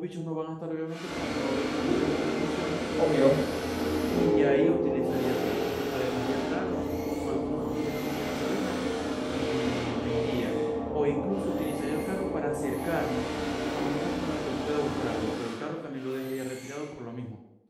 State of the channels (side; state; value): both; identical; correlation 1.00